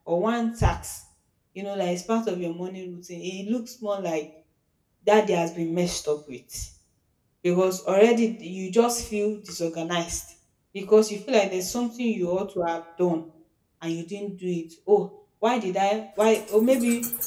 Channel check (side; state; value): both; identical; correlation 1.00